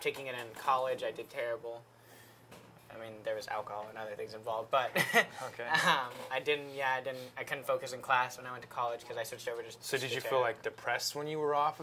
taking it in college, I did terrible. I mean, there was alcohol and other things involved, but okay. I couldn't focus in class when I went to college because I switched over to. So did you feel like depressed when you were off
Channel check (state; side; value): identical; both; correlation 1.00